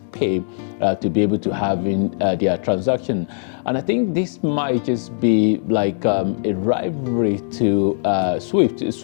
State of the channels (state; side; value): silent; right; digital silence